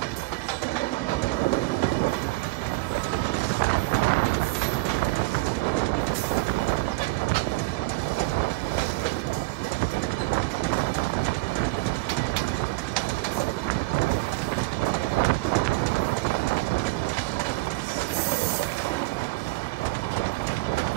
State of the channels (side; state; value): left; quieter; 22.2 dB